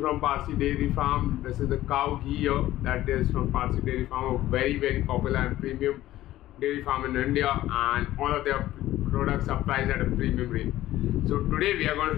from Parsi Dairy Farm. This is the cow ghee here that is from Parsi Dairy Farm, a very popular and premium dairy farm in India, and all of their products are priced at a premium rate. So today we are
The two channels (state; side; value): quieter; right; 14.9 dB